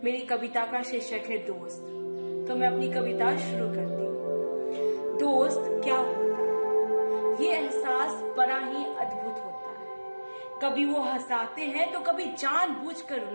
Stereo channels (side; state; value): both; inverted; correlation -1.00